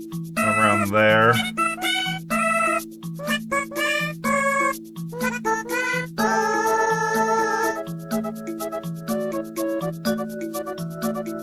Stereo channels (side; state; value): both; identical; correlation 1.00